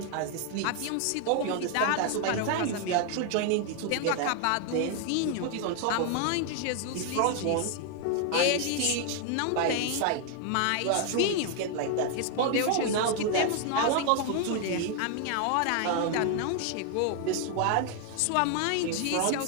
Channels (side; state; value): both; different; correlation 0.00